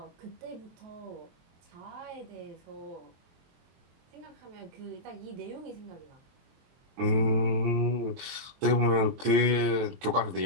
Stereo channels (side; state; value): left; late; 23 ms